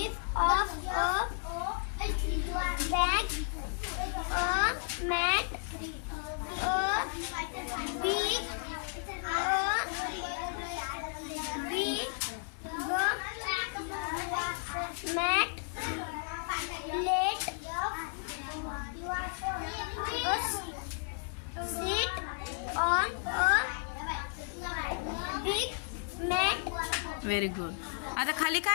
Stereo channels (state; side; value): silent; right; 56 dB below the other